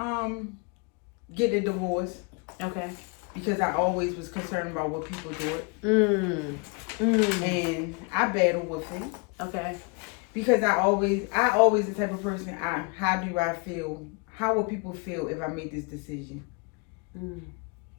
Get a divorce. Okay. Because I always was concerned about what people do. And I battle with it. Okay. Because I always the type of person, how do I feel? How will people feel if I make this decision?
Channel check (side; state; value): right; quieter; 32.6 dB